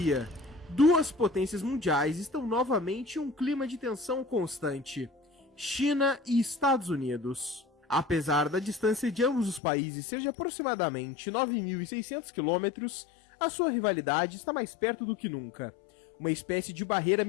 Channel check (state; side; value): drops out; right; at 9.6 s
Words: duas potências mundiais estão novamente em um clima de tensão constante: China e Estados Unidos. Apesar da distância de ambos os países ser de aproximadamente 9.600 quilômetros, a sua rivalidade está mais perto do que nunca. Uma espécie de barreira